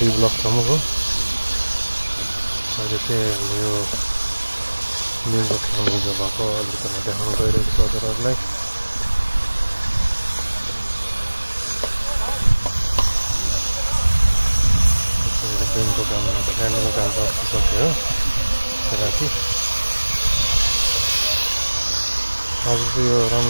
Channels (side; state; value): both; inverted; correlation -1.00